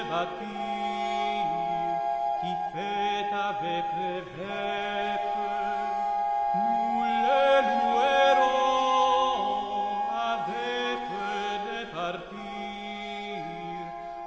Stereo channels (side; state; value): both; identical; correlation 1.00